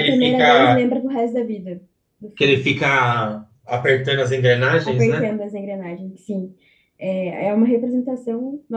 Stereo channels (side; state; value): both; identical; correlation 1.00